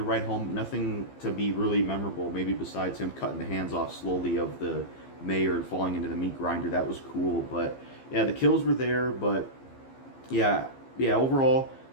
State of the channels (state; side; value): late; right; 15 ms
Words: write home, nothing to be really memorable, maybe besides him cutting the hands off slowly of the mayor and falling into the meat grinder. That was cool, but yeah, the kills were there, but yeah, overall,